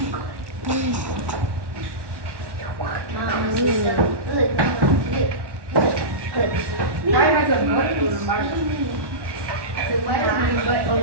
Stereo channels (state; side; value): late; left; 1.1 ms